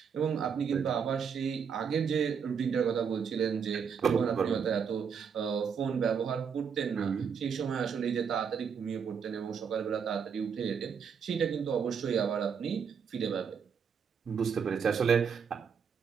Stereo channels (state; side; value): quieter; left; 6.7 dB